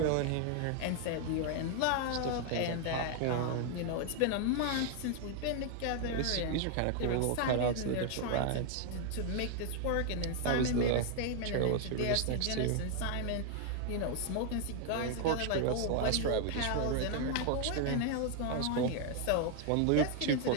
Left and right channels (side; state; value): both; different; correlation 0.00